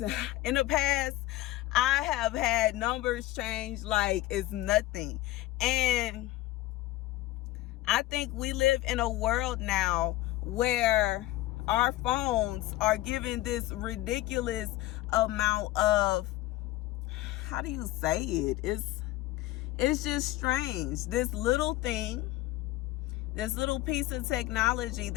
in the past, I have had numbers change like it's nothing. And I think we live in a world now where our phones are given this ridiculous amount of, how do you say it? It's just strange. This little thing, this little piece of technology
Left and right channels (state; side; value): quieter; right; 16.7 dB